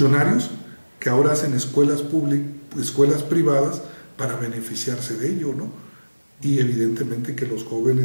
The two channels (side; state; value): both; inverted; correlation -1.00